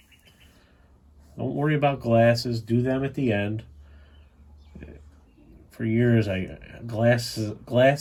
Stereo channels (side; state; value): both; identical; correlation 1.00